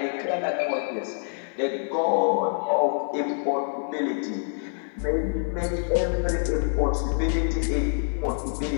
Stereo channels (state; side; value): silent; right; digital silence